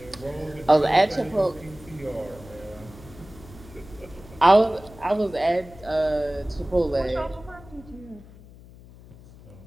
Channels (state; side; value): noise; left; hum, 20 dB below the sound